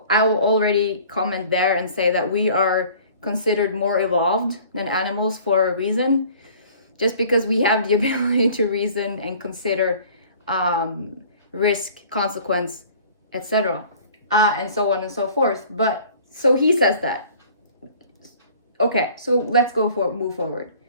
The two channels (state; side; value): inverted; both; correlation -0.50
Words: will already comment there and say that we are considered more evolved than animals for a reason, just because we have the ability to reason and consider risk, consequence, etc., and so on and so forth. But so he says that. Okay, so let's move forward.